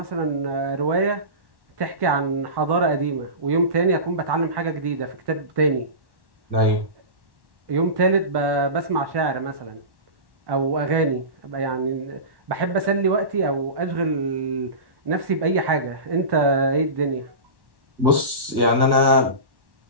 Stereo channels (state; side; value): late; left; 1.1 ms